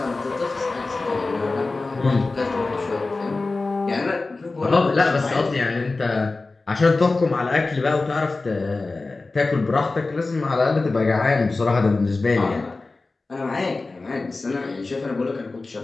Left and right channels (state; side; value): quieter; right; 3.5 dB